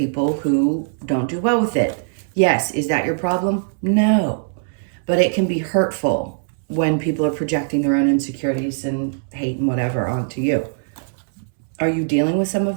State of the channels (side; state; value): left; silent; 65 dB below the other